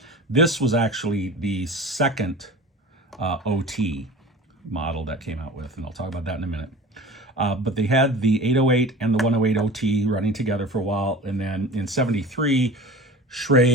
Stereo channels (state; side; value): normal; both; correlation 0.37